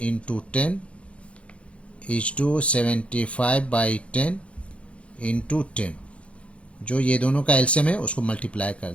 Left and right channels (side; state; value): right; late; 0.061 ms